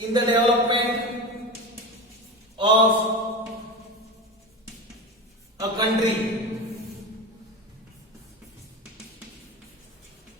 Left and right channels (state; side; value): normal; both; correlation 0.25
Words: the development of a country.